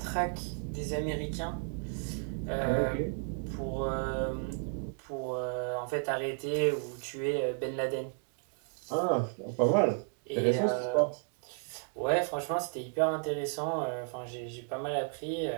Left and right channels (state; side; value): silent; left; 56 dB below the other